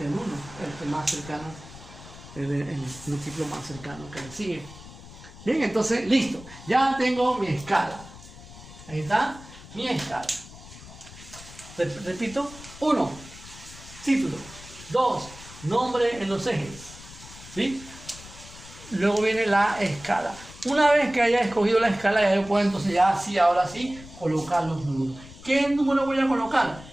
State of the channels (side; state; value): left; noise; rumble, 17 dB below the sound